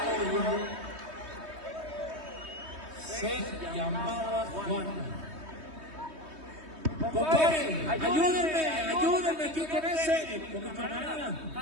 Se llamaba Juan. Compadre, ayúdenme aquí con ese. Con mi camarada.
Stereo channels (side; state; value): left; late; 3.2 ms